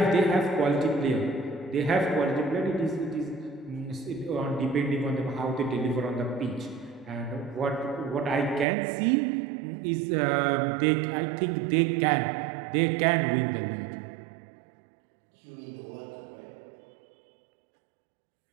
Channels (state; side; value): drops out; left; at 8.7 s